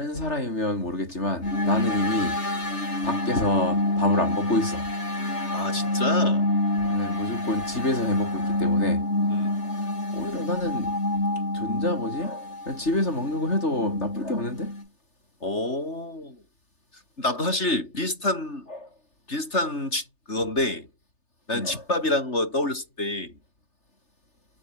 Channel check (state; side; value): late; right; 3.3 ms